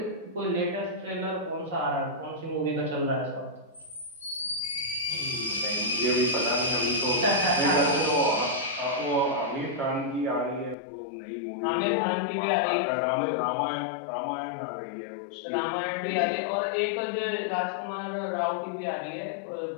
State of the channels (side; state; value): right; drops out; at 10.8 s